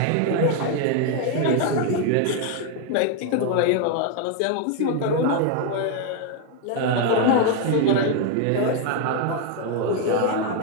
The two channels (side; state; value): both; different; correlation 0.01